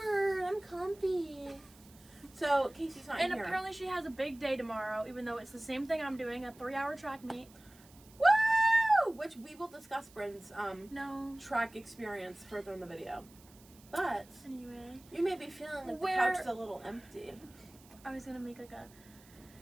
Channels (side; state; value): right; noise; hiss, 25 dB below the sound